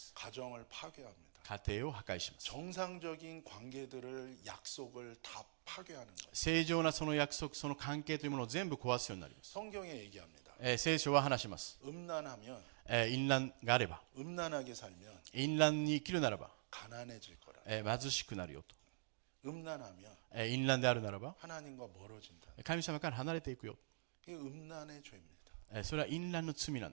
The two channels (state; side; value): silent; left; digital silence